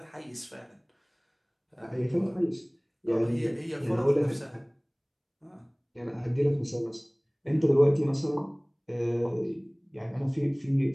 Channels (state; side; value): identical; both; correlation 1.00